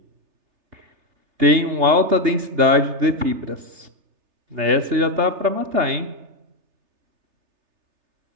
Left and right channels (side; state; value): left; late; 3.3 ms